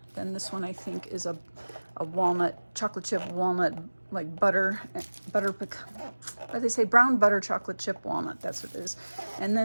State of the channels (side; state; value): both; inverted; correlation -1.00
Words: then this one I think is a walnut, chocolate chip walnut, like butter, what they say, brown butter chocolate chip walnut, that's what it is. And